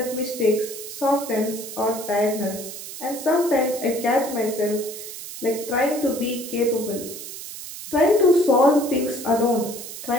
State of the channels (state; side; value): noise; right; hiss, 11 dB below the sound